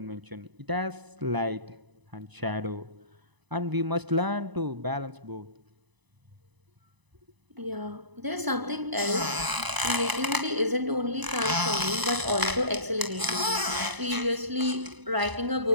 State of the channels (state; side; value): late; left; 1.0 ms